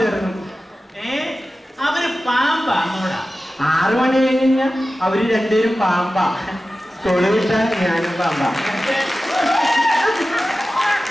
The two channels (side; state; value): both; normal; correlation 0.94